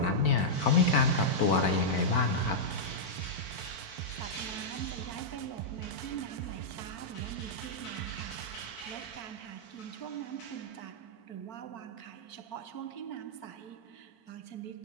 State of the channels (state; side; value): late; right; 4.5 ms